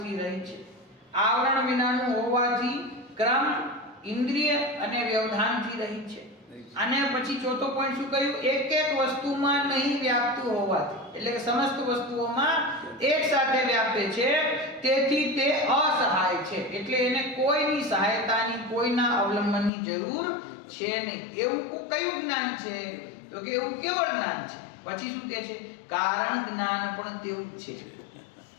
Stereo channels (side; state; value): right; drops out; at 19.7 s